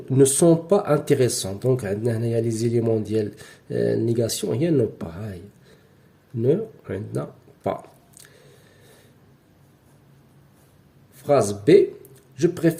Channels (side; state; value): both; identical; correlation 1.00